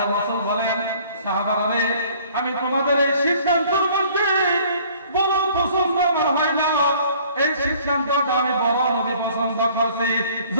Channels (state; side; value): inverted; both; correlation -0.55